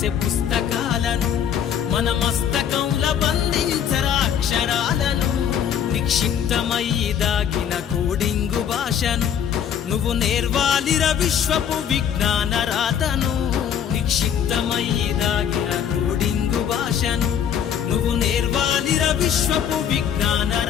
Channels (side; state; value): right; quieter; 8.7 dB